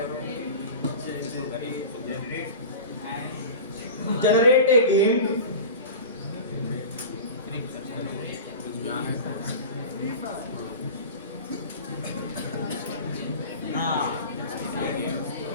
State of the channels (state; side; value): inverted; both; correlation -0.33